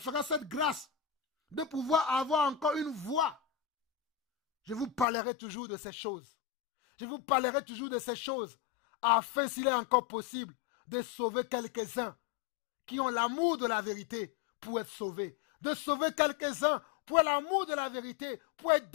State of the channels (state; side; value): drops out; right; at 5.1 s